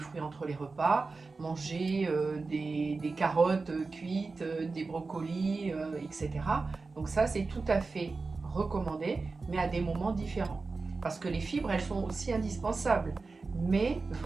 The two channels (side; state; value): left; quieter; 4.0 dB